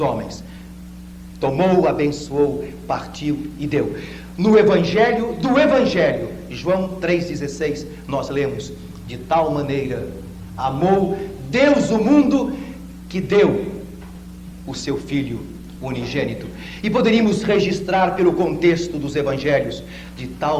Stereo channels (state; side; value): identical; both; correlation 1.00